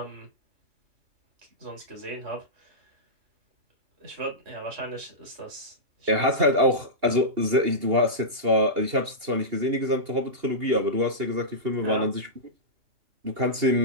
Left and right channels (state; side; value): late; left; 2.8 ms